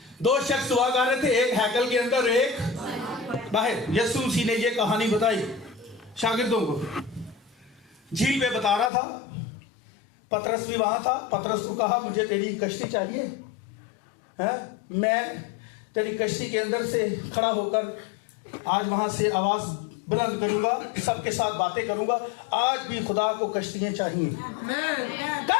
2 शख्स हुआ कर रहे थे, एक हैकल के अंदर, एक बाहर। यीशु मसीह ने ये कहानी बताई शागिर्दों को, झील पे बता रहा था, पतरस भी वहां था। पतरस को कहा मुझे तेरी कश्ती चाहिए है, मैं तेरी कश्ती के अंदर से खड़ा होकर आज वहां से आवाज बुलंद करूंगा, सबके साथ बातें करूंगा। आज भी खुदा को कश्तियां चाहिए,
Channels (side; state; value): right; drops out; at 8.9 s